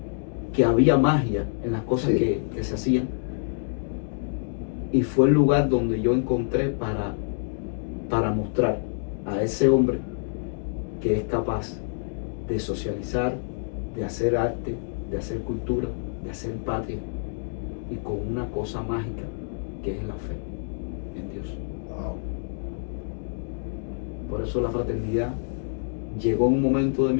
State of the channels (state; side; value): silent; right; digital silence